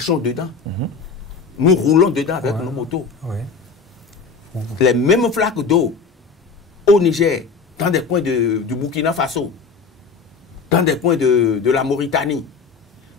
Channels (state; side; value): quieter; right; 5.0 dB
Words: dedans. Nous roulons dedans avec nos motos. Les mêmes flaques d'eau au Niger, dans des coins du Burkina Faso, dans des coins de la Mauritanie,